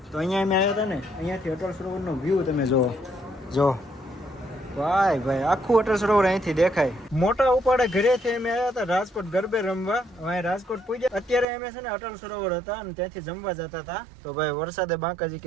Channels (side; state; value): left; drops out; at 11.5 s